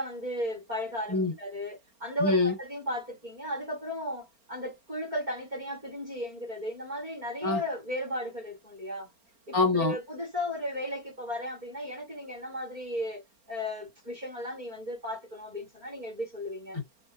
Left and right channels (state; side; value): late; left; 4.4 ms